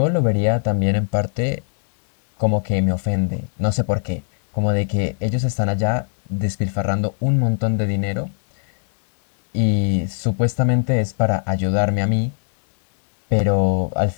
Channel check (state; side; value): silent; right; digital silence